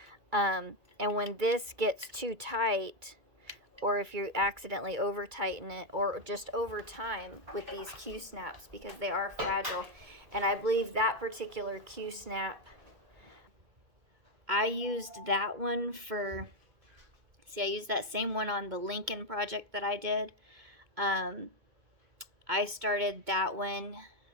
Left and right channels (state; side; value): late; left; 2.2 ms